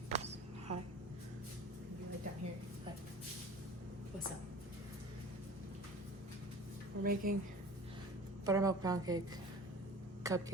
Hi. You like down here? Like, what's up? We're making buttermilk pancake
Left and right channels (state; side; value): normal; both; correlation 0.40